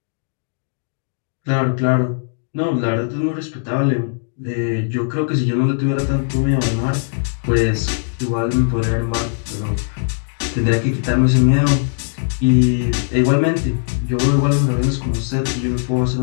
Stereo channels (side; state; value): right; silent; digital silence